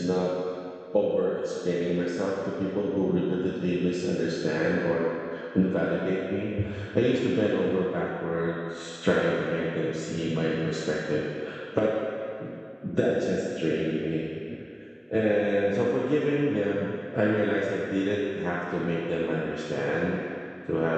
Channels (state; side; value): identical; both; correlation 1.00